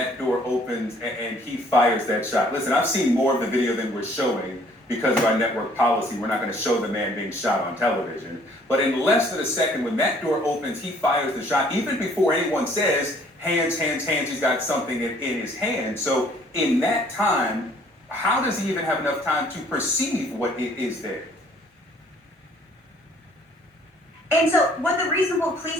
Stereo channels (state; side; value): normal; both; correlation 0.59